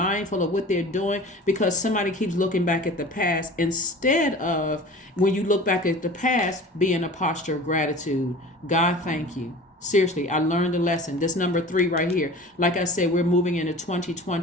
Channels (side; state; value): both; normal; correlation 0.40